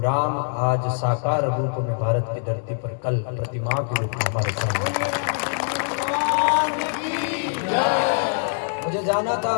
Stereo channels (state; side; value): silent; right; digital silence